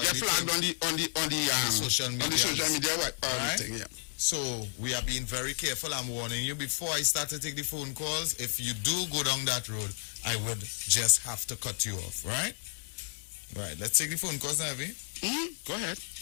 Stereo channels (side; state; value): right; silent; 57 dB below the other